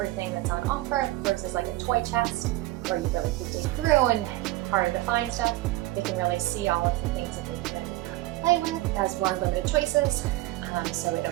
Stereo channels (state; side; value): quieter; left; 18.2 dB